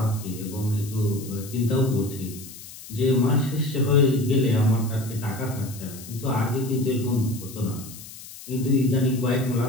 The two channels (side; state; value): left; noise; hiss, 15 dB below the sound